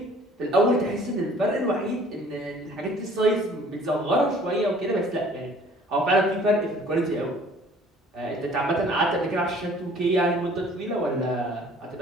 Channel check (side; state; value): both; normal; correlation 0.53